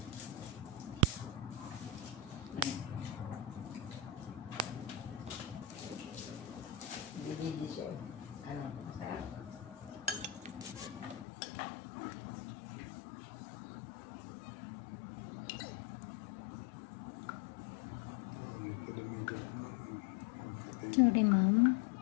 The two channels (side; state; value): right; drops out; at 11.2 s